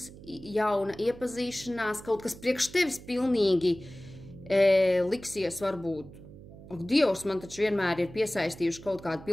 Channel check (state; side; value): noise; right; hum, 17 dB below the sound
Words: jauna iepazīšanās, kaut kas priekš tevis pilnīgi liksies varbūt. Ak, Dievs, man taču vienmēr ir piesaistījuši kaut kādu